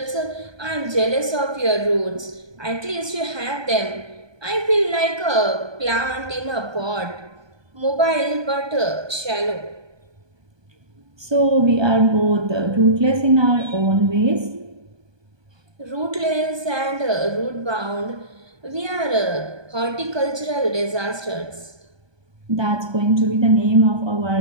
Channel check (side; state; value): left; late; 1.2 ms